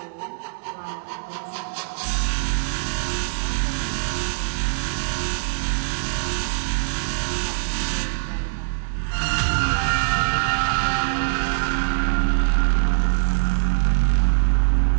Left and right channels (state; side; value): silent; left; digital silence